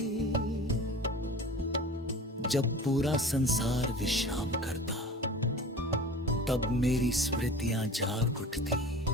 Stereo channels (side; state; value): both; normal; correlation 0.38